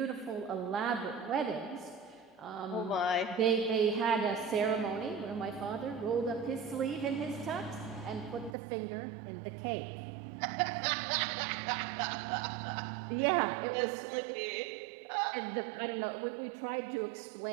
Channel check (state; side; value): drops out; left; at 8.6 s